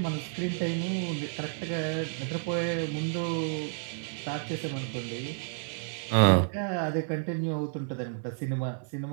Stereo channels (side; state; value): left; silent; 57 dB below the other